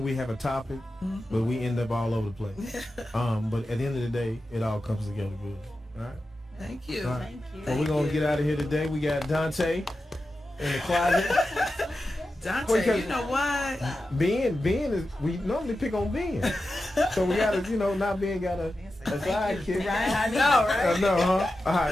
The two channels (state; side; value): normal; both; correlation 0.92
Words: we have a topic, but we end up all over the place. But at the end of the day, it all comes together good. All right? Thank you. Right. Thank you. Well, we're going to get out of here today. We got Dante in the closet. Dante, you know what? Ben is, we normally pick on Ben. So we got to, not Ben got a sidekick. Right, I know, right? I know, huh? All